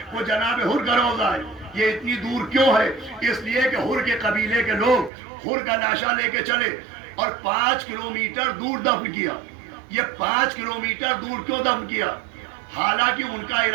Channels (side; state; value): left; drops out; at 5.1 s